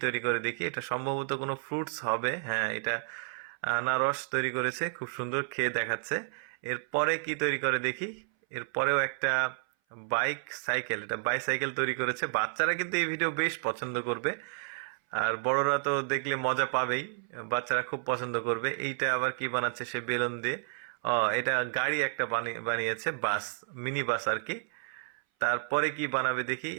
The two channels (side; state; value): left; silent; 57 dB below the other